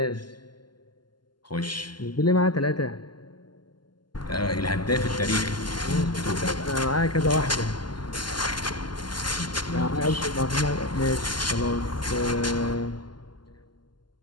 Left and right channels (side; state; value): right; late; 0.71 ms